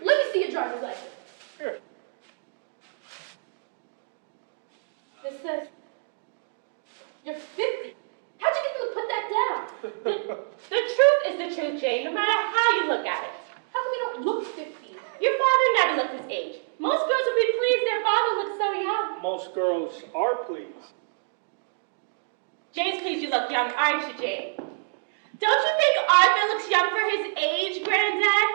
Let me see your driver's license. Here. This says you're 50. How'd you get them to put that down? The truth is the truth, Jane, no matter how you look at it. How come you don't look 50? Your father never looked his age. Most girls would be pleased their father looks so young. Most girls are pleased. Jane's pleased you look young, aren't you, Jane? Don't you think Arthur looks young for his age, Granddad?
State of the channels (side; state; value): left; silent; digital silence